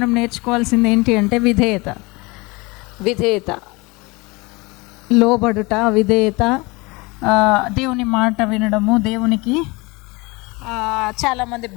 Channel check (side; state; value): right; quieter; 25.2 dB